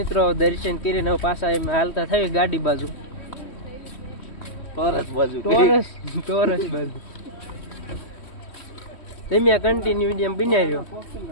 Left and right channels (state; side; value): late; right; 3.1 ms